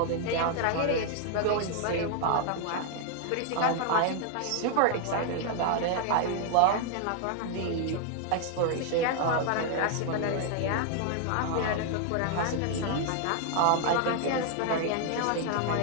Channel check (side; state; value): both; different; correlation 0.00